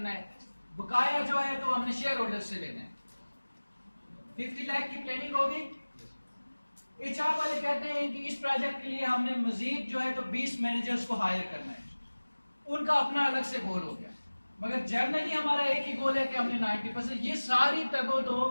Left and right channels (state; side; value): inverted; both; correlation -1.00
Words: है, बकाया जो है तो हमने शेयर होल्डर से लेना है। 50 लाख की प्लानिंग होगी। एचआर वाले कहते हैं कि इस प्रोजेक्ट के लिए हमने मजीद जो है तो 20 मैनेजर्स को हायर करना है, उनका अपना अलग से गोल हो गया। मगर जर्नली हमारा एक ही गोल है कि हमने 90%, ये सारी तगो दो,